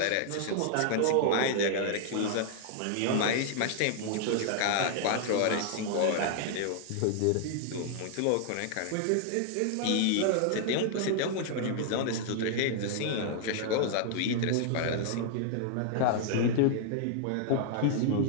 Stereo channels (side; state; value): both; different; correlation 0.00